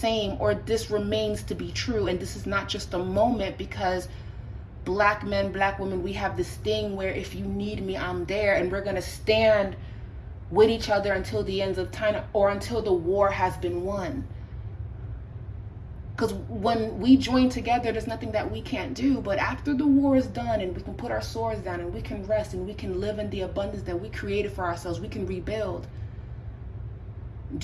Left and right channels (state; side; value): identical; both; correlation 1.00